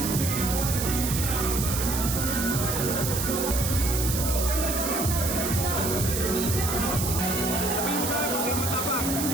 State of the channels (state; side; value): noise; right; hiss, 3 dB below the sound